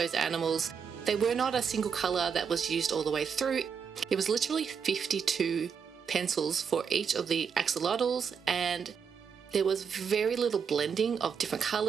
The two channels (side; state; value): left; quieter; 6.6 dB